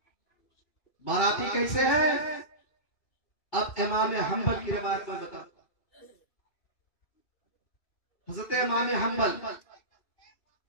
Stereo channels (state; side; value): late; right; 2.6 ms